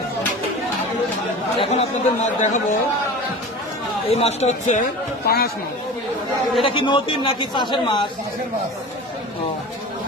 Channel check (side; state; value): both; normal; correlation 0.34